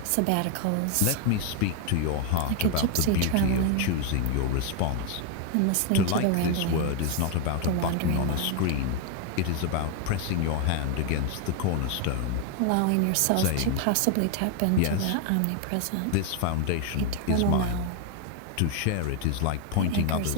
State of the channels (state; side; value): different; both; correlation 0.01